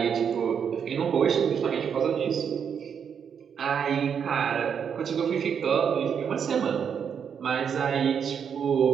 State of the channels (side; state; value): left; quieter; 7.4 dB